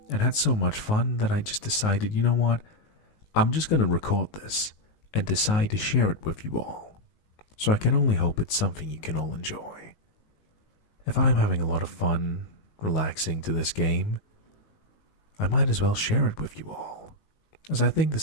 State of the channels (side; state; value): right; late; 19 ms